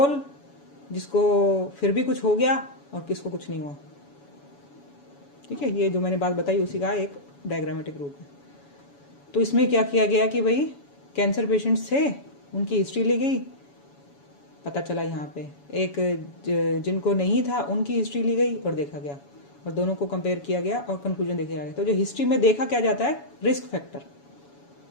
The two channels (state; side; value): late; right; 7.1 ms